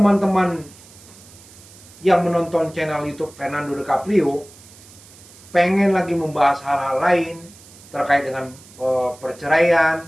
yang menonton channel YouTube Fernando DiCaprio pengen lagi membahas hal-hal lain terkait dengan perceraian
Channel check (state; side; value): noise; right; hiss, 22 dB below the sound